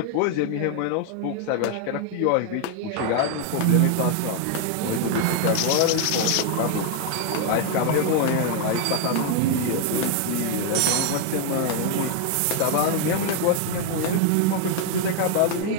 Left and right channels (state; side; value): different; both; correlation 0.00